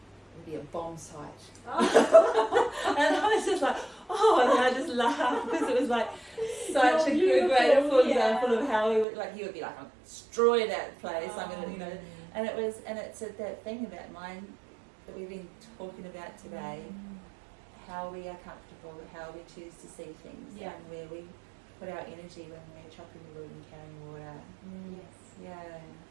would be a bomb site. And I was just like, oh, and I just laughed because it was like such a good, beautiful example of how he would be like, I'll destroy that place. I'm gonna, and it's that thing about mind that we've been talking about today, how we are comfortable, how we choose to see things, and where we put our energy when we're chopping the wood and carrying water. yes. Yeah.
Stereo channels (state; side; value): drops out; left; at 9.1 s